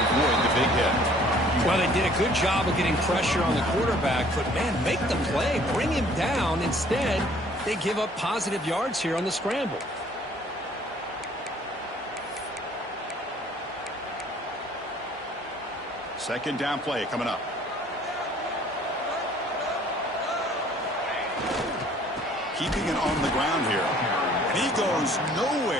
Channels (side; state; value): both; normal; correlation 0.56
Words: the big hit. Well, they did a good job of getting pressure on the quarterback, but, man, make the play. Bring him down. Instead, they give up positive yards here on the scramble. Second down play coming up. Keeping it on the ground here. And he goes